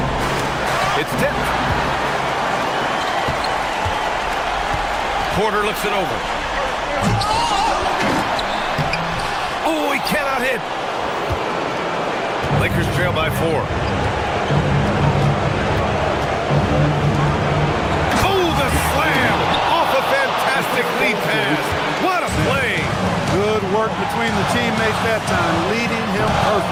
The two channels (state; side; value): identical; both; correlation 1.00